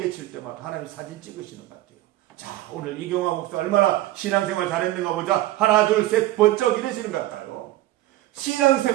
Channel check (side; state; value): left; quieter; 15.7 dB